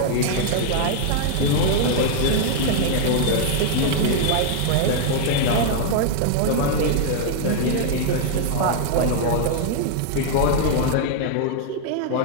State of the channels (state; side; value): different; both; correlation -0.01